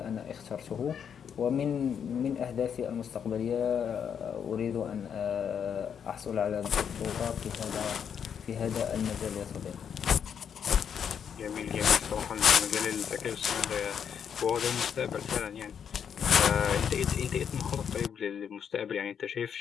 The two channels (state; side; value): quieter; right; 7.8 dB